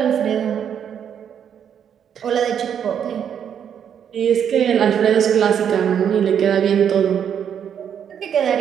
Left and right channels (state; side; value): quieter; left; 8.5 dB